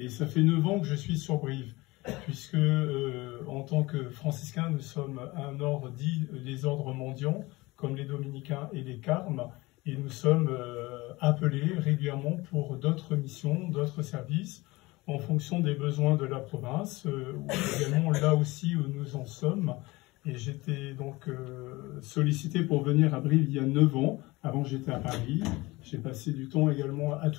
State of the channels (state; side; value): quieter; right; 21.7 dB